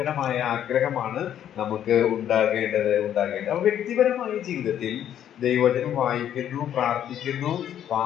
ആഗ്രഹമാണ് നമുക്ക് ഉണ്ടാകേണ്ടത്. അപ്പൊ വ്യക്തിപരമായ ജീവിതത്തിൽ ദൈവവചനം വായിക്കുന്നു, പ്രാർത്ഥിക്കുന്നു,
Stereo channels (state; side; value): quieter; right; 10.3 dB